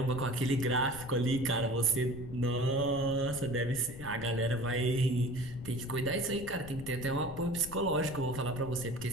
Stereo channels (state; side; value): noise; left; rumble, 13 dB below the sound